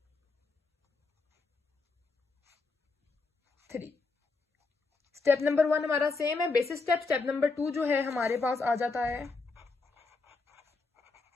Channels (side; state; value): right; quieter; 4.0 dB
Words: 3। Step number 1 हमारा सेम है, बेसिक स्टेप। स्टेप नंबर 2 जो है हमारे पास आ जाता है